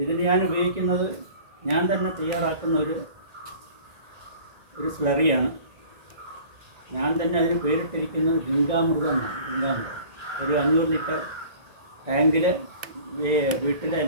ഇതിന് ഞാൻ ഉപയോഗിക്കുന്നത് ഞാൻ തന്നെ തയ്യാറാക്കുന്ന ഒരു സ്ലറിയാണ്. ഞാൻ തന്നെ അതിന് പേരിട്ടിരിക്കുന്നത് ഗംഗാമൃതം എന്നാണ്. ഗംഗാമൃതം ഒരു 500 ലിറ്റർ ടാങ്കിൽ വീട്ടിലെ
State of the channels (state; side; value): late; left; 1.9 ms